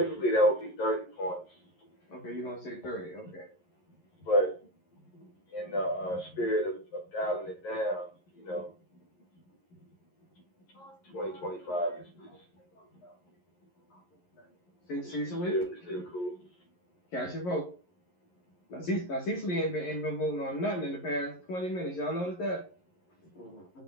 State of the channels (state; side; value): late; right; 11 ms